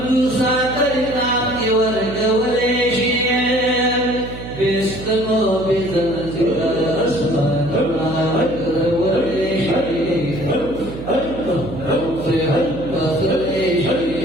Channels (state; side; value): noise; right; hum, 11 dB below the sound